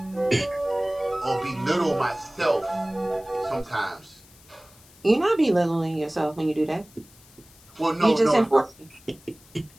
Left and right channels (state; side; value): noise; left; hiss, 26 dB below the sound